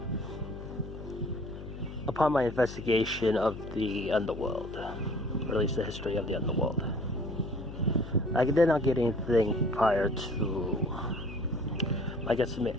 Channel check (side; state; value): left; noise; hum, 11 dB below the sound